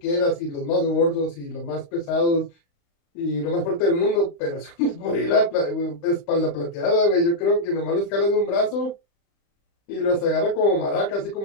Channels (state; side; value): late; right; 35 ms